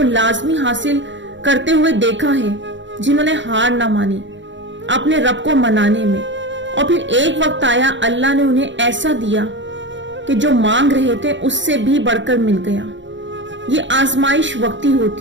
लाजमी हासिल करते हुए देखा है जिन्होंने हार ना मानी अपने रब को मनाने में, और फिर एक वक्त आया अल्लाह ने उन्हें ऐसा दिया कि जो मांग रहे थे उससे भी बढ़कर मिल गया। ये आजमाइश वक्ती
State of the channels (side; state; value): left; late; 0.54 ms